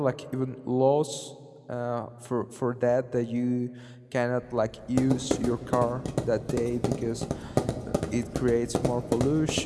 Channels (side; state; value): both; identical; correlation 1.00